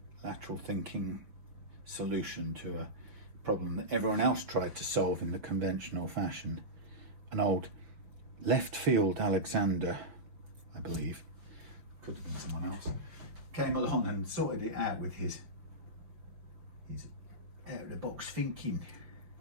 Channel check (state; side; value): late; left; 5.8 ms